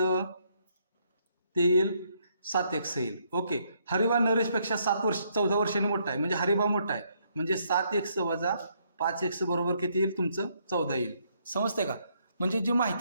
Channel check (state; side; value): inverted; both; correlation -0.72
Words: ते येईल 7x येईल. ओके हरिबा नरेशपेक्षा 14 वर्षांनी मोठा आहे म्हणजे हरिबा मोठा आहे म्हणजे 7x - 5x बरोबर किती येईल तुमचं 14 येईल. समजते का. म्हणजे जी